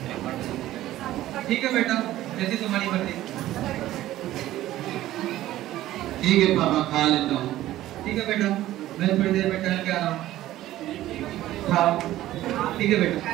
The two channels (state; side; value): quieter; left; 14.6 dB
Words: ठीक है बेटा, जैसी तुम्हारी मर्जी। ठीक है पापा, खा लेता हूँ। ठीक है बेटा, मैं थोड़ी देर में टहल के आ रहा हूँ। खाओ। ठीक है बेटा।